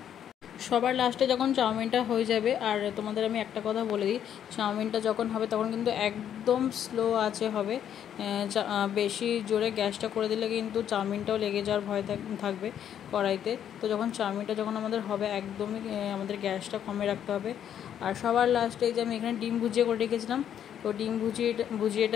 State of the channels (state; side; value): quieter; right; 9.6 dB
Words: সবার লাস্টে যখন চাউমিনটা হয়ে যাবে, আর তোমাদের আমি একটা কথা বলে দিই, চাউমিনটা যখন হবে তখন কিন্তু একদম স্লো আঁচে হবে। বেশি জোরে গ্যাসটা করে দিলে কিন্তু চাউমিনটাও লেগে যাওয়ার ভয় থাকবে কড়াইতে। তো যখন চাউমিনটা আমাদের হবে, একদমই আমাদের গ্যাসটা কমে রাখতে হবে। আর সবার লাস্টে এই যে আমি এখানে ডিম ভুজিয়ে করে রেখেছিলাম, তো ডিম